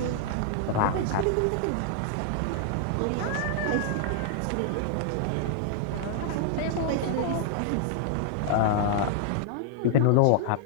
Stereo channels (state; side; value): different; both; correlation -0.01